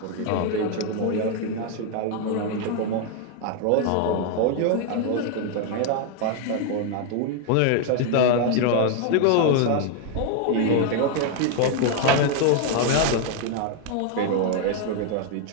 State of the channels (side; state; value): both; different; correlation 0.00